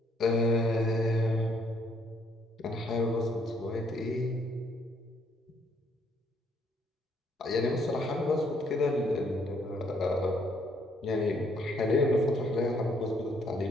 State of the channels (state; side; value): normal; both; correlation 0.69